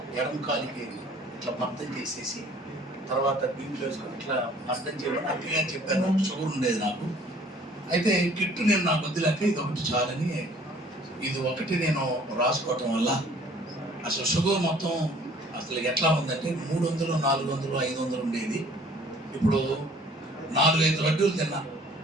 ఎడమ కాలికి ఇట్లా మర్దం చేసేసి తర్వాత దీంట్లో వేసుకొని ఇట్లా మర్దం చేయమని అక్కగా చెప్పాను. షుగర్ ఉండేది నాకు. అయితే కిట్టు నేను నాకు వద్దులేక ఇది ఒకటి చాలని ఇది ఒకటి నేను రాసుకోవటం వల్ల అసలు షుగర్ మొత్తం అసలు ఎట్లా ఉందంటే 300, 400, 500 ఉండేది. ఇప్పుడు 4-5 లడ్డూలు తిన్నా.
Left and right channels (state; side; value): normal; both; correlation 0.54